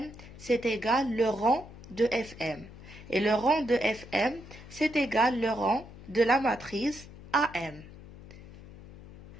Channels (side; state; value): left; noise; hum, 17 dB below the sound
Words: c'est égal le rang de Fm. Et le rang de Fm, c'est égal le rang de la matrice AM.